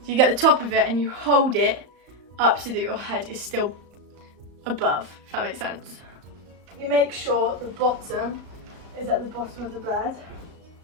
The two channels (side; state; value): left; late; 35 ms